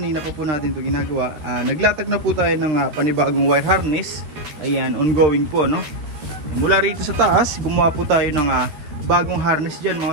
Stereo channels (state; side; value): late; left; 13 ms